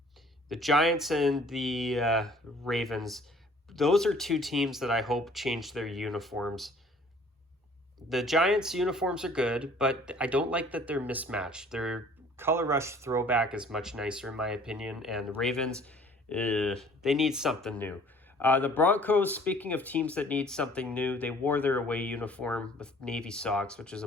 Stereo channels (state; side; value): normal; both; correlation 0.54